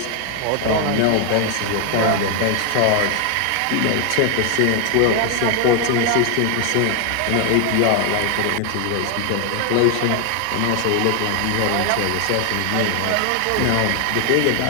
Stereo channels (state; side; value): different; both; correlation 0.00